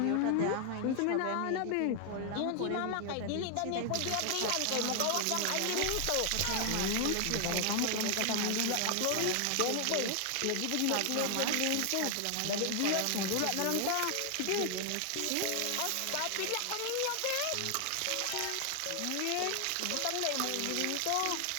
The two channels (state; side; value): different; both; correlation 0.00